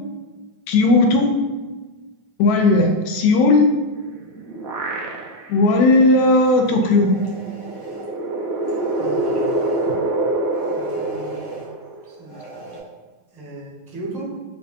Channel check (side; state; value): right; late; 9.2 ms